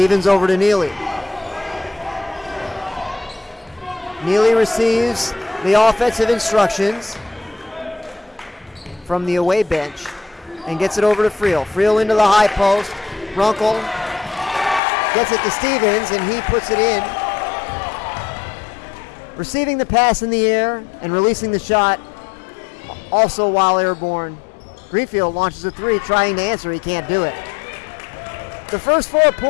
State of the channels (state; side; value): drops out; right; at 14.8 s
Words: over to Neely. Neely receives the offensive instructions from the away bench and gets it over to Friel. Friel into the high post. Runkle gets it to Stevens, and he puts it in. Receiving the pass in the air and releasing the shot, also while airborne. Greenfield launches a three, trying to answer. He can't do it. The first 4